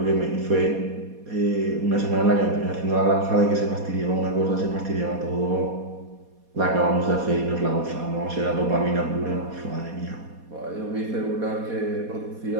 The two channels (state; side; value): late; left; 4.2 ms